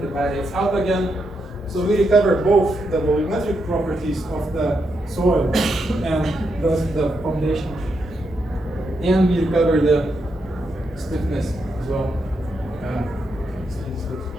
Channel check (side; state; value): both; normal; correlation 0.82